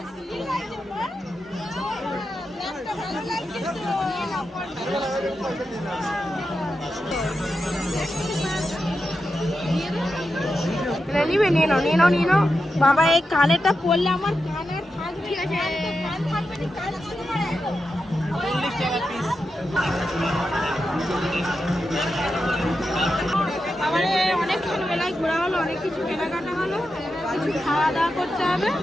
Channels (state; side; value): normal; both; correlation 0.89